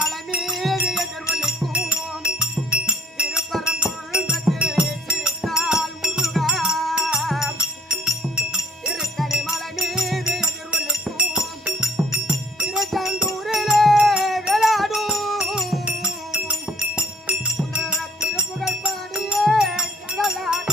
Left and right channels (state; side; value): normal; both; correlation 0.59